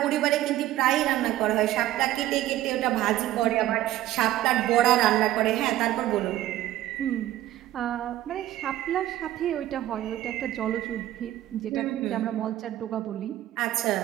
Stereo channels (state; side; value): quieter; left; 14.1 dB